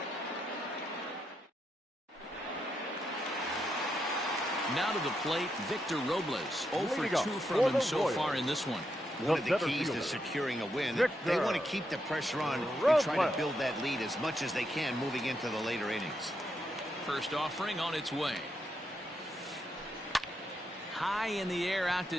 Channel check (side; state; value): both; normal; correlation 0.82